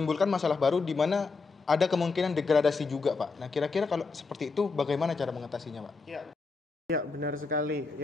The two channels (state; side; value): quieter; right; 4.4 dB